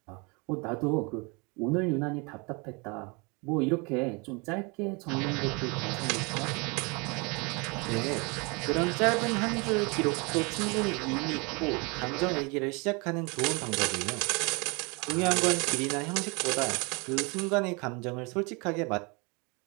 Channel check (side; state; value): left; quieter; 30.0 dB